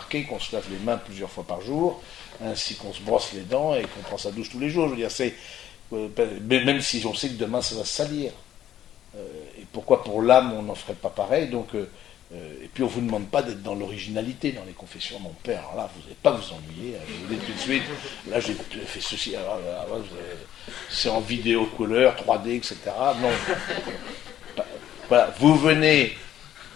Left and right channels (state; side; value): quieter; right; 11.4 dB